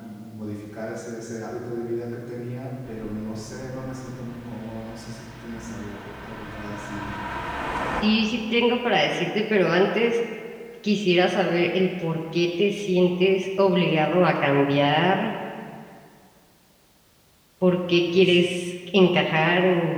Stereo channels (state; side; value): identical; both; correlation 1.00